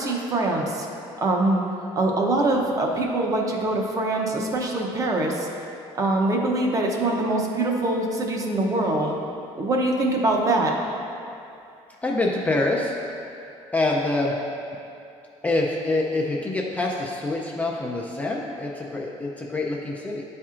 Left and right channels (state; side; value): normal; both; correlation 0.54